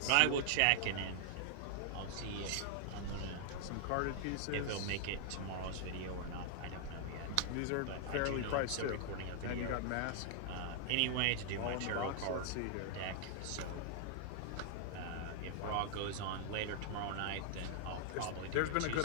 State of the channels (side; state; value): both; different; correlation 0.00